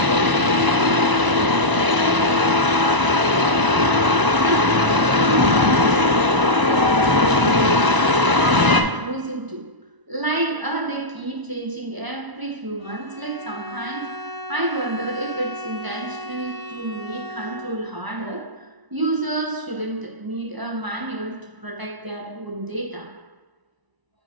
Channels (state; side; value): late; left; 1.0 ms